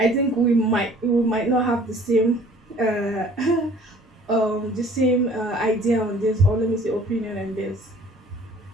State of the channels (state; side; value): normal; both; correlation 0.52